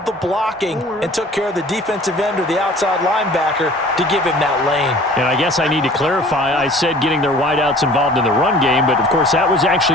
the blocking and took care of the defensive end or the outside linebacker to give him that lane. And I guess I need to clarify, I said getting their wideouts involved in the run game, but of course that was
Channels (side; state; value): both; normal; correlation 0.48